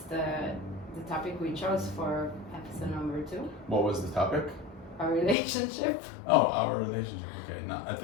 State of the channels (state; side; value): drops out; right; at 5.4 s